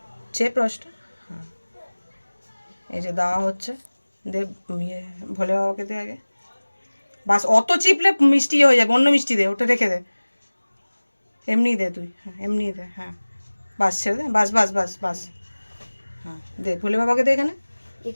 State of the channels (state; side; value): inverted; both; correlation -1.00